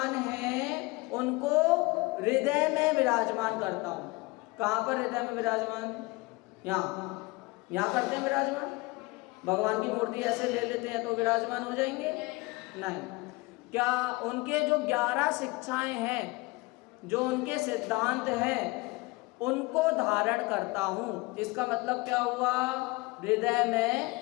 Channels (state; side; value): quieter; right; 23.9 dB